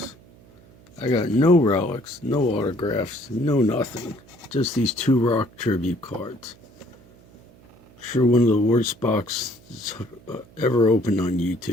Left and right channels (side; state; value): right; noise; hum, 26 dB below the sound